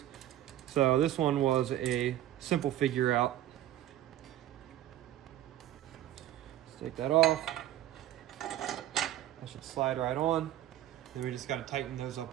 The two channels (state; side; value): quieter; left; 12.9 dB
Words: So this one was a simple figure out. Let's take that off. That should slide right on. Then we just got to tighten those